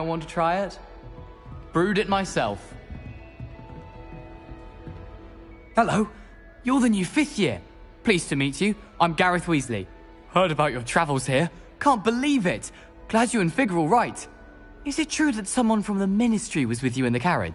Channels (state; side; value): identical; both; correlation 1.00